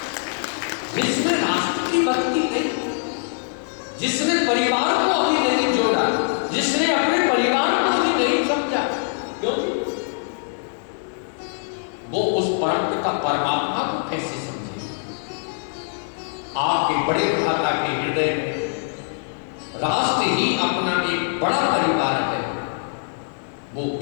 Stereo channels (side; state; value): right; silent; 62 dB below the other